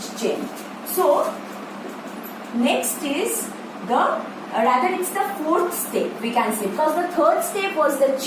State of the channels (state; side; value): identical; both; correlation 1.00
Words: chain. So next is rather it's the 4th step, we can say, because the 3rd step was the